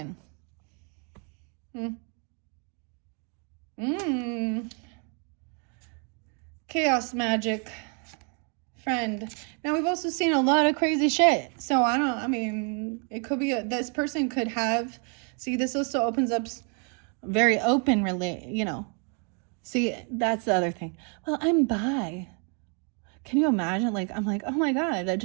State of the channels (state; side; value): quieter; left; 38.5 dB